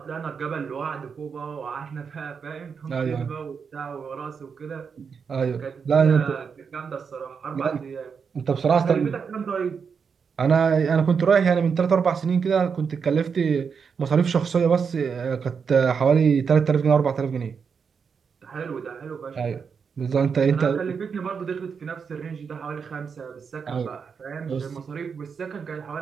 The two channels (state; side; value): quieter; left; 6.1 dB